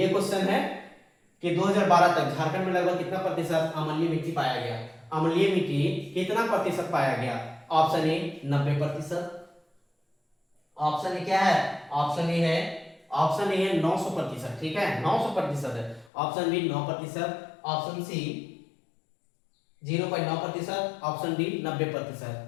क्वेश्चन है कि 2012 तक झारखंड में लगभग कितना प्रतिशत अम्लीय मिट्टी पाया गया, अम्लीय मिट्टी कितना प्रतिशत पाया गया। ऑप्शन ए 90%, ऑप्शन ए क्या है, ऑप्शन ए है, ऑप्शन ए है 900%। ठीक है, 900% है। Option B 9%, option C 0.9%, option D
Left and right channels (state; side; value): drops out; right; at 16.1 s